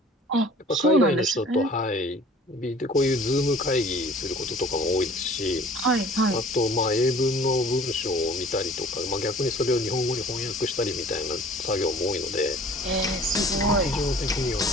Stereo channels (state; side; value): normal; both; correlation 0.48